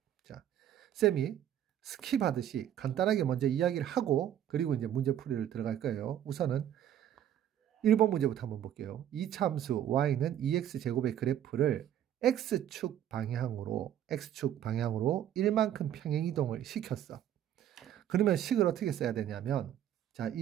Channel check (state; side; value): quieter; left; 10.7 dB